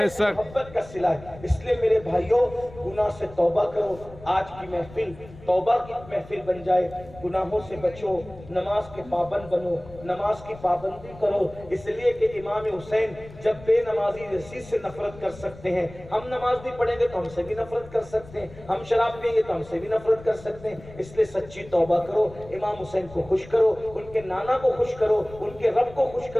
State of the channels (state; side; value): noise; left; rumble, 18 dB below the sound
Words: سے محبت کا صلہ ہے. اس لیے میرے بھائیوں گناہ سے توبہ کرو. آج کی محفل توبہ کی محفل بن جائے. گناہوں سے بچو, نماز کے پابند بنو, نماز کی پابندی کرو. اس لیے کہ امام حسین جب بے نمازی یزید سے نفرت کر سکتے ہیں, ہم نماز نہیں پڑھیں گے تو ہم سے بھی نفرت کر سکتے ہیں, ہم شراب پئیں گے تو ہم سے بھی نفرت کر سکتے ہیں. اس لیے سچی توبہ کرو, امام حسین کو خوش کرو, ان کے نانا کو خوش کرو, ان کے رب کو خوش